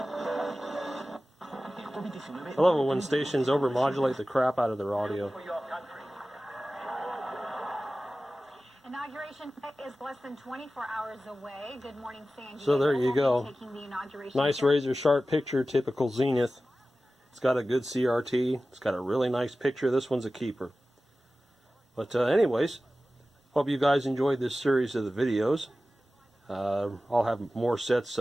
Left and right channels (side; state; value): both; normal; correlation 0.95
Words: I love it when stations overmodulate the crap out of their audio. Inauguration is less than 24 hours away. Good morning, San Diego. So there you go. Taking the inauguration Nice razor sharp picture, typical Zenith. It's got a good CRT. It's got a really nice picture. This one's a keeper. But anyways, hope you guys enjoyed this series of the videos. I'll have more sets